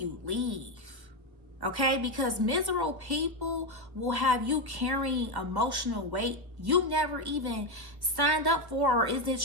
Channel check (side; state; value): left; late; 1.1 ms